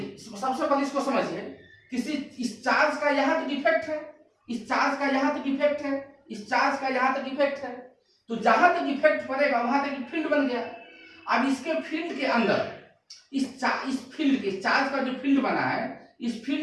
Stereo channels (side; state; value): both; identical; correlation 1.00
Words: सबसे पहले इसको समझिए, किसी इस चार्ज का यहां तक इफेक्ट है, इस चार्ज का यहां तक इफेक्ट है, इस चार्ज का यहां तक इफेक्ट है। तो जहां तक इफेक्ट पड़ेगा वहां तक फील्ड बन गया। अब इसके फील्ड के अंदर, इस फील्ड के चार्ज का जो फील्ड बना है, इस